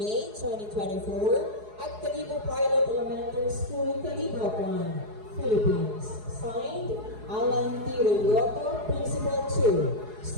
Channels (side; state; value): left; late; 4.7 ms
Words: 2024 at Calibo Pilot Elementary School, Calibo, Philippines. Signed, Alan T. Relioto, Principal 2,